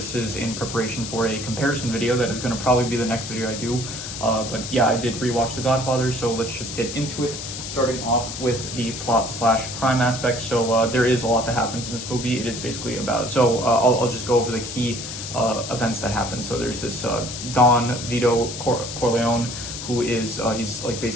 is in preparation for a comparison video that is going to probably be the next video I do. But yeah, I did rewatch The Godfather, so let's just get into it. Starting off with the plot/crime aspect. So there is a lot that happens in this movie. It is basically about, I'll just go over the key events that happen. So there's this Don Vito Corleone, who is he's like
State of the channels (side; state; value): left; noise; hiss, 8 dB below the sound